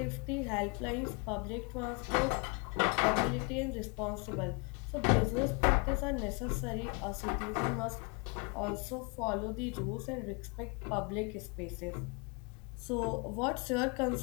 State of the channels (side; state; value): right; quieter; 31.7 dB